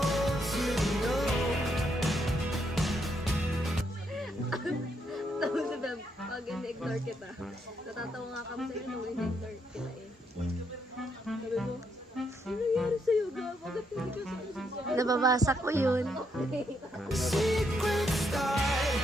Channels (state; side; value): normal; both; correlation 0.77